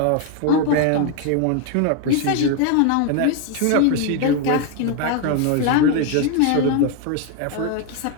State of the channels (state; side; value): different; both; correlation 0.01